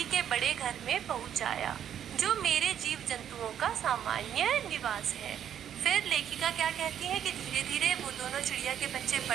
के बड़े घर में पहुंचाया, जो मेरे जीव जंतुओं का सामान्य निवास है। फिर लेखिका क्या कहती है कि धीरे धीरे वो दोनों चिड़िया के बच्चे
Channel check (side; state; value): left; quieter; 9.6 dB